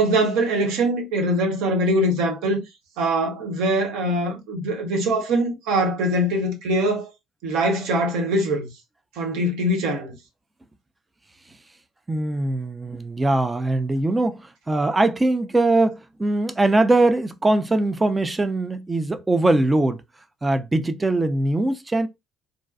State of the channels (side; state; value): both; normal; correlation 0.64